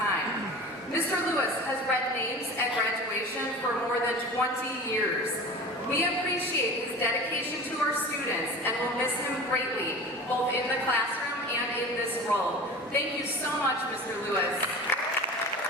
Mr. Lewis has read names at graduation for more than 20 years. We appreciate his dedication to our students and will miss him greatly, both in the classroom and in this role. Thank you so much, Mr. Lewis.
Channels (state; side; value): normal; both; correlation 0.36